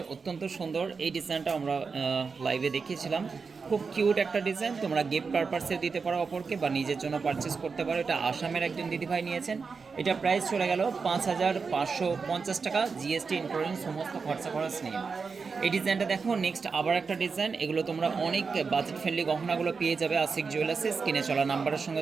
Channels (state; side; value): quieter; left; 5.0 dB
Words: অত্যন্ত সুন্দর এই ডিজাইনটা আমরা লাইভে দেখিয়েছিলাম। খুব কিউট একটা ডিজাইন, তোমরা গিফট পারপাসে দিতে পারো অপরকে বা নিজের জন্য পারচেস করতে পারো। এটা আসামের একজন দিদিভাই নিয়েছেন। এটা প্রাইস চলে গেল 5550 টাকা জিএসটি ইনক্লুডিং সমস্ত খরচ নিয়ে। এই ডিজাইনটা দেখো। নেক্সট আবার একটা ডিজাইন, এগুলো তোমরা অনেক বাজেট ফ্রেন্ডলি গহনাগুলো পেয়ে যাবে আশিক জুয়েলার্সে। স্ক্রিনে চলা নাম্বারের